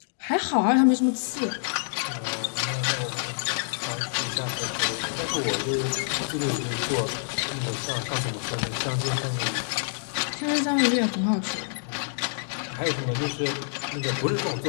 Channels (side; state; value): right; silent; digital silence